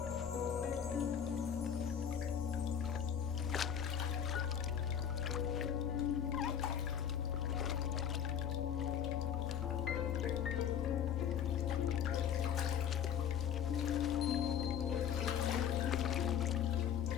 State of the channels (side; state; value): right; quieter; 8.7 dB